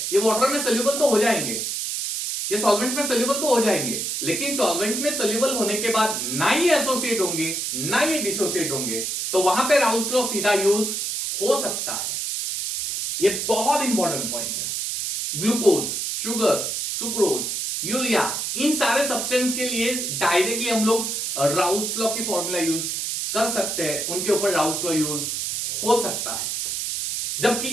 ये वाटर में सोल्यूबल तो हो जाएंगे, ये सॉल्वेंट में सोल्यूबल तो हो जाएंगे, लेकिन सॉल्वेंट में सोल्यूबल होने के बाद ना ये एसोसिएट होंगे ना ये डिसोसिएट होंगे, तो वहां पे राउल्स लॉ सीधा यूज हो सकता है। ये बहुत इंपॉर्टेंट पॉइंट है। ग्लूकोज, शुगर, सुक्रोज, यूरिया, इन सारे सब्सटेंस के लिए डायरेक्टली हम लोग राउल्स लॉ की फॉर्मूला यूज कर सकते हैं, उनके ऊपर राउल्स लॉ यूज हो सकता है।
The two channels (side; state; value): right; noise; hiss, 2 dB below the sound